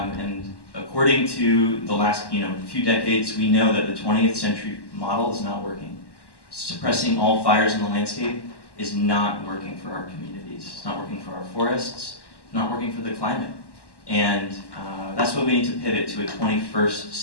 according to the last few decades, we know that the 20th century model is not working. Suppressing all fires in the landscape is not working for our communities. It's not working for our forests. It's not working for the climate. And that's why we need to pivot to a 21st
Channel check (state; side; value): late; right; 1.1 ms